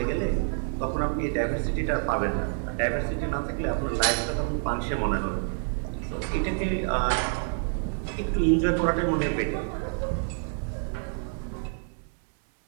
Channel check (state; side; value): silent; left; 57 dB below the other